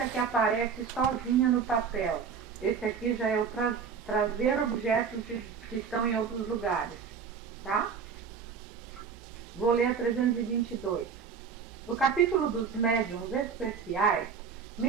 que aparece sozinha no papel. Esse aqui já é o trazer objetos que estão em outros lugares. Tá? Vou ler a 322. No capítulo dos médiuns especiais,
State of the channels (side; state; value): left; quieter; 6.3 dB